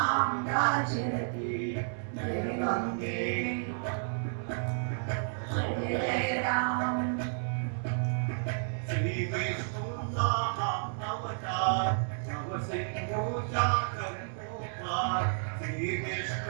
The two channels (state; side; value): silent; left; 57 dB below the other